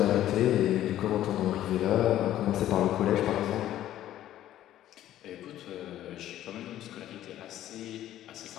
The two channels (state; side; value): quieter; right; 12.7 dB